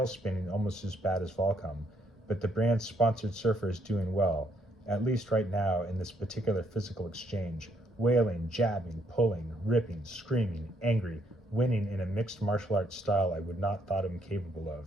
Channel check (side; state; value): both; normal; correlation 0.71